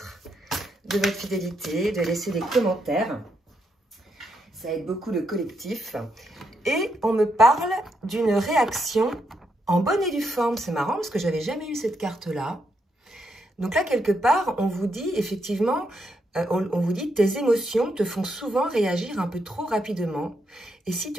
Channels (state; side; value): normal; both; correlation 0.79